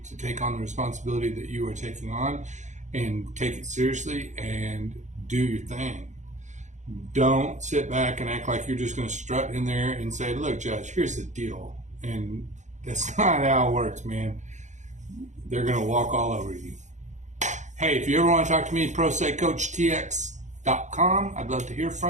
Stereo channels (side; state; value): left; late; 0.35 ms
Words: take on the responsibility that you are taking on and take it seriously and do your thing. Don't sit back and act like you're just going to strut in there and say, look, Judge, here's the deal. And that's not how it works, man. They're going to walk all over you. Hey, if you ever want to talk to me, ProStateCoachTX.com. I'd love to hear